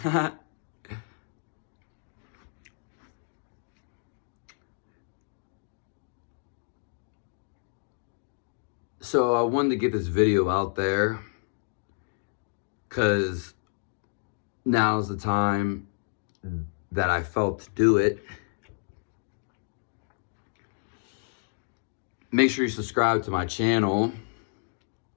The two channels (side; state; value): right; silent; digital silence